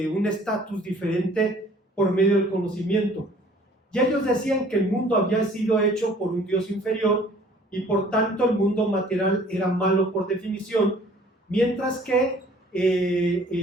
un estatus diferente por medio del conocimiento. Y ellos decían que el mundo había sido hecho por un Dios inferior y por tanto el mundo material era malo por definición, mientras que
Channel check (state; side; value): normal; both; correlation 0.54